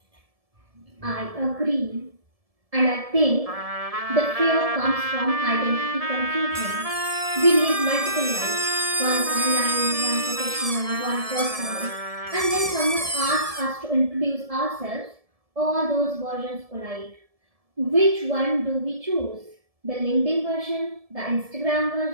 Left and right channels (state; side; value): late; left; 1.7 ms